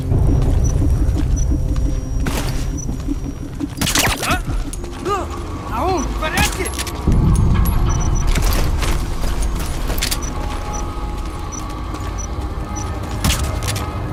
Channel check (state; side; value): identical; both; correlation 1.00